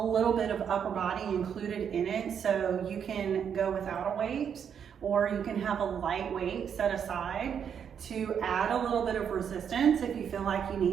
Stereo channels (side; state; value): left; quieter; 7.8 dB